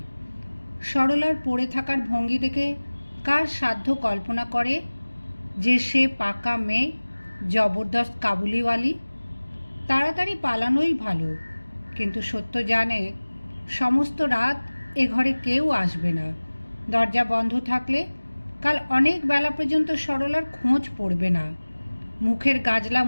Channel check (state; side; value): inverted; both; correlation -1.00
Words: সরলার পড়ে থাকার ভঙ্গি দেখে কার সাধ্য কল্পনা করে যে সে পাকা মেয়ে, জবরদস্ত কাবুলিওয়ালি। তাড়াতাড়ি পালানোই ভালো, কিন্তু সত্য জানে সমস্ত রাত এ ঘরে কেউ আসবে না। দরজা বন্ধ থাকলে কাল অনেক বেলা পর্যন্ত সরলার খোঁজ পড়বে না। মুখের গাজলা